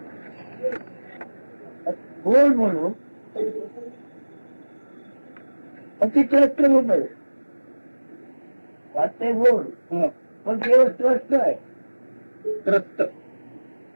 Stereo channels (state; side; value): inverted; both; correlation -1.00